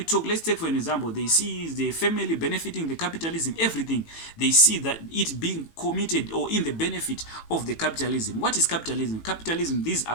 talk, let's take for an example, they see the family benefiting the capitalism, everything, they see that it being committed or in the benefit of the capitalism. What is capitalism? Capitalism, these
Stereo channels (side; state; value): right; late; 18 ms